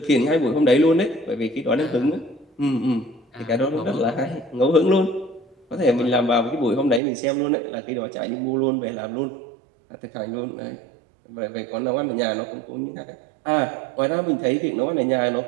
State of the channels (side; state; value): left; drops out; at 7.0 s